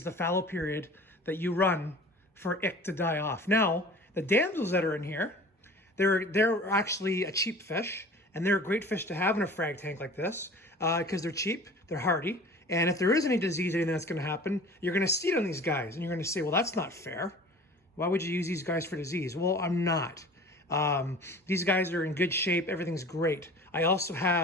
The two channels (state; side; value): normal; both; correlation 0.42